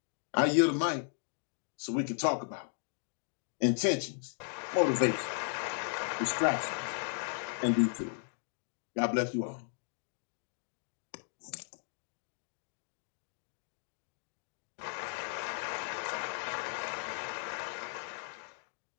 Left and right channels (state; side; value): silent; right; 54 dB below the other